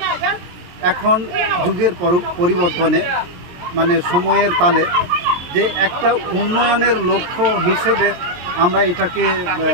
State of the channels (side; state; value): left; late; 22 ms